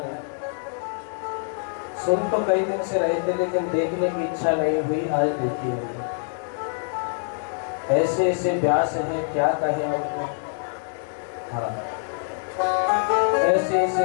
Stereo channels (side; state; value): right; silent; digital silence